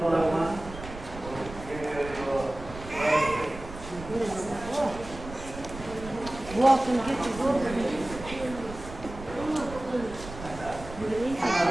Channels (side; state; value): right; noise; rumble, 13 dB below the sound